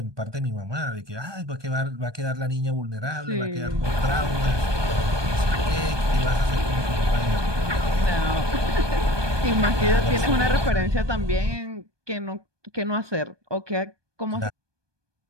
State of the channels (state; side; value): late; left; 1.2 ms